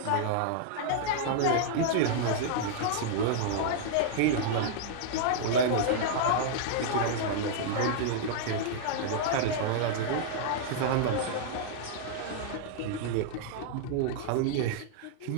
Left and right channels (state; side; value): different; both; correlation -0.01